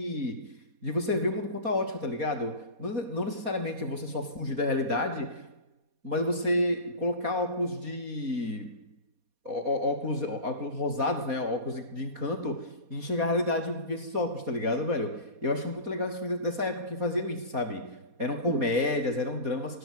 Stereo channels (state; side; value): late; left; 4.2 ms